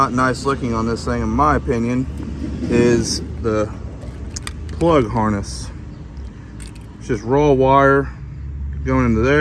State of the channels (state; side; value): identical; both; correlation 1.00